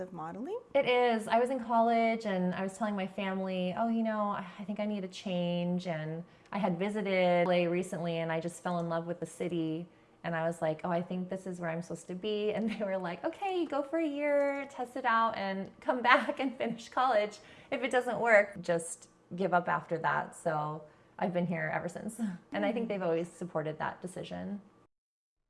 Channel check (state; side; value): identical; both; correlation 1.00